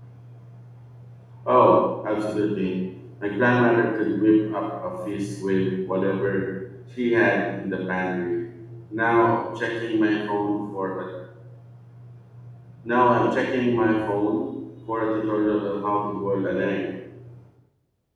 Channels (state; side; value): identical; both; correlation 1.00